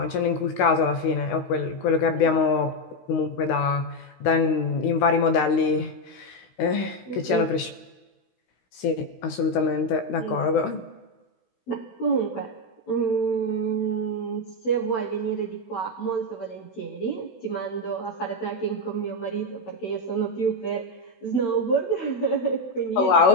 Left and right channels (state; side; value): late; right; 16 ms